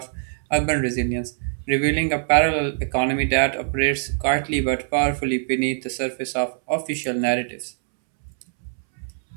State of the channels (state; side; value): silent; left; 63 dB below the other